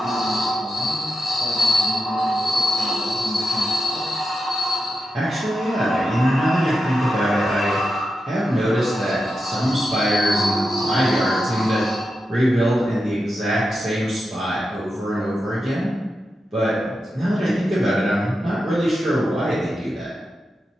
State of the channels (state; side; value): normal; both; correlation 0.89